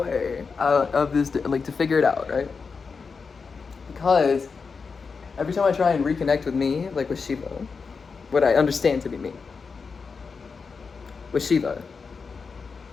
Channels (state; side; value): quieter; right; 5.1 dB